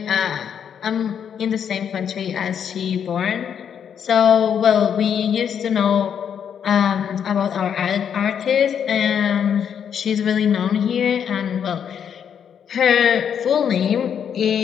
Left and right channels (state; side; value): quieter; right; 8.1 dB